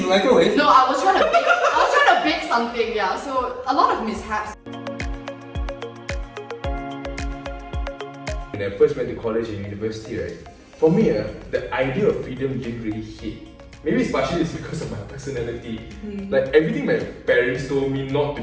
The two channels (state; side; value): identical; both; correlation 1.00